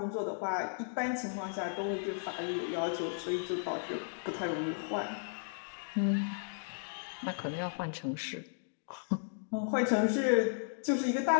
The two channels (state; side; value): silent; right; digital silence